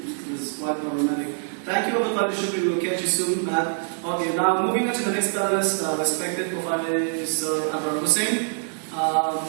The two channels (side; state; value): left; silent; 61 dB below the other